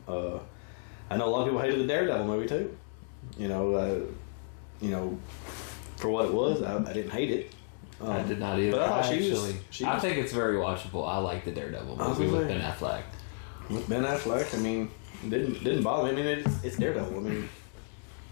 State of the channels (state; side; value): silent; right; 57 dB below the other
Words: I know a lot of people hated the Daredevil movie too. You know, for what it was, I didn't hate it. I did not either. But I thought I think it's very watchable. I like the Daredevil movie with Ben Affleck. With Ben Affleck, I mean, didn't bother me. I mean, it's Daredevil. I mean,